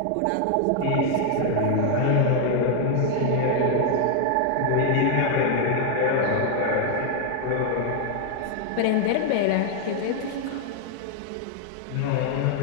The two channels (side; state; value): both; different; correlation 0.00